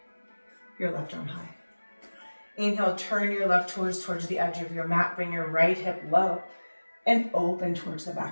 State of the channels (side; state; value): both; inverted; correlation -1.00